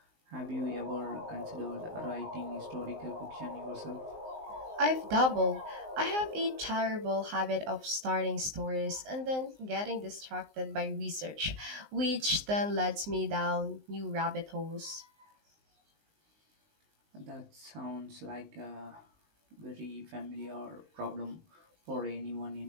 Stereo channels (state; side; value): late; left; 19 ms